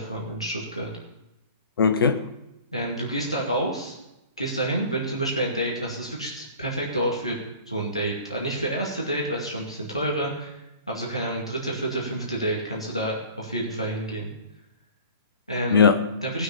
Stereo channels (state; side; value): inverted; both; correlation -0.44